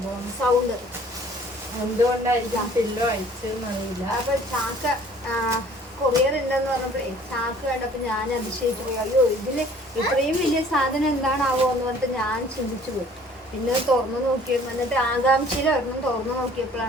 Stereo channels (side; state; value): both; normal; correlation 0.54